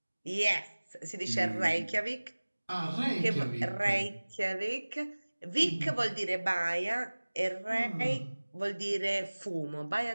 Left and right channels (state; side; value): inverted; both; correlation -1.00